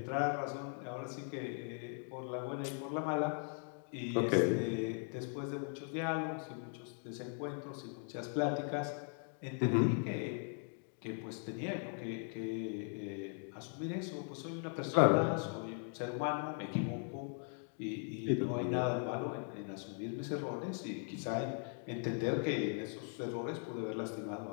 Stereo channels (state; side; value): silent; right; 52 dB below the other